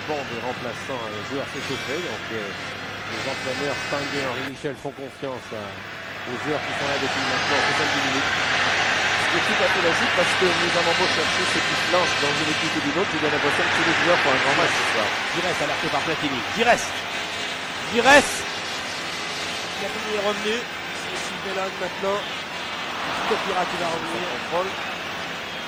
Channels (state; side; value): identical; both; correlation 1.00